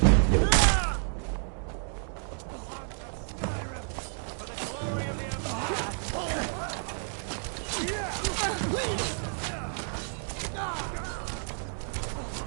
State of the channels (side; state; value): left; silent; 58 dB below the other